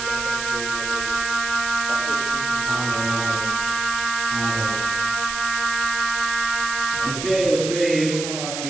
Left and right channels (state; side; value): noise; right; hiss, 5 dB below the sound